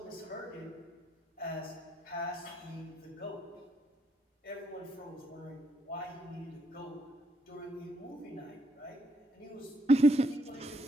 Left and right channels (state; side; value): normal; both; correlation 0.73